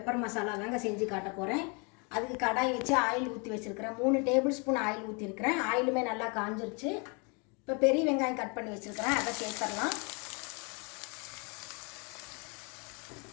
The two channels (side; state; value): right; quieter; 33.0 dB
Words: மசாலா தாங்க செஞ்சு காட்ட போகிறேன். அதுக்கு கடாய் வச்சு ஆயில் ஊற்றி வச்சுருக்கிறேன். 3 டேபிள் ஸ்பூன் ஆயில் ஊற்றிருக்கிறேன். ஆயிலுமே நல்லா காஞ்சிருச்சு. இப்போ பெரிய வெங்காயம் கட் பண்ணி வச்சுருக்கிறேன், அதை சேர்த்துடலாம்.